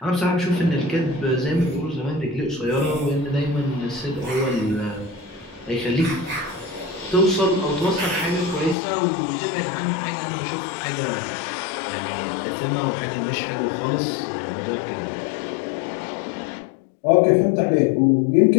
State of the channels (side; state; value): right; drops out; at 8.8 s